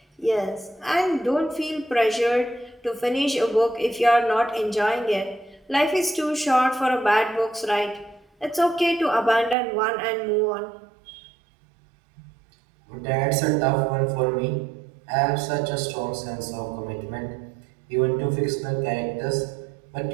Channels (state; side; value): drops out; left; at 9.6 s